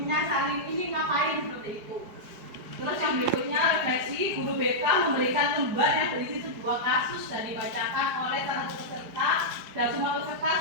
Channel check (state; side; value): late; left; 4.8 ms